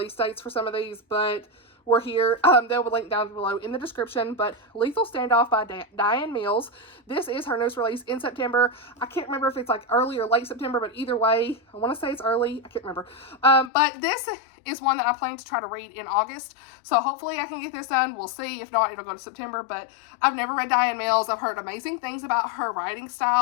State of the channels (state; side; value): drops out; right; at 13.7 s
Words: dates for some of these, but we're here. They'll be linked down below in the description. But Lethal Standoff by DiAnn Mills. This is her newest release in September. I can't remember if it's like early or late September, but either way, I want to say it's early. I can't remember. But this is one that I plan to try to read in August. So hopefully I can get this done. We'll see. If not, it'll go to September. But I've never read DiAnn Mills. I've heard amazing things about her writing